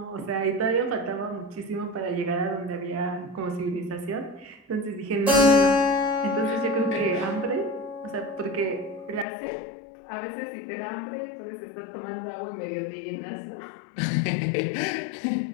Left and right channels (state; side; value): drops out; right; at 9.2 s